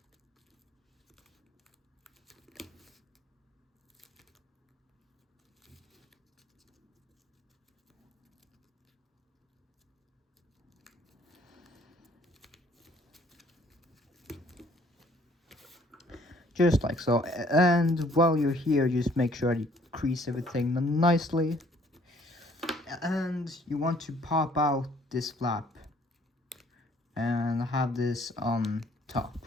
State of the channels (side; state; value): both; normal; correlation 0.61